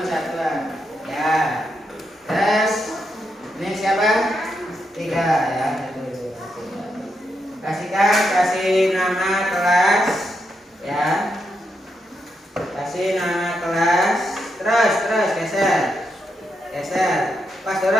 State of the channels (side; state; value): both; normal; correlation 0.83